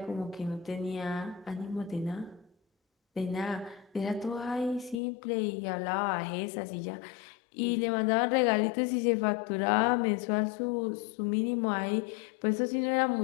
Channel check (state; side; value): drops out; right; at 5.0 s